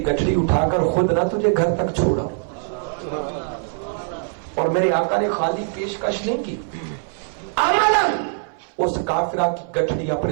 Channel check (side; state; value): left; silent; 61 dB below the other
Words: گٹھڑی اٹھا کر خود نہ تجھے گھر تک چھوڑا۔ اور میرے آقا نے خالی پیشکش نہیں کی، عملاً اس کافرہ کی گٹھڑی